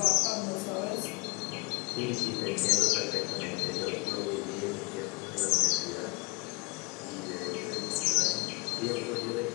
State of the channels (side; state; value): right; quieter; 29.4 dB